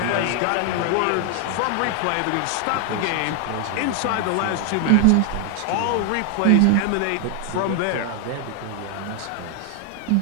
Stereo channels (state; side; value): different; both; correlation 0.00